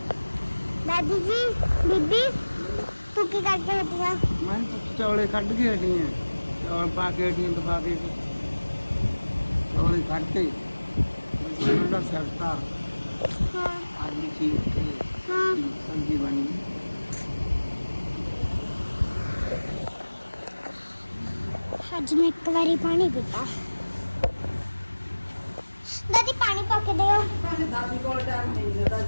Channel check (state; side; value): inverted; both; correlation -1.00